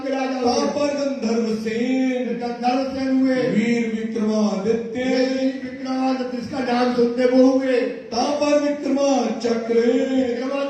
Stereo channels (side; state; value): both; identical; correlation 1.00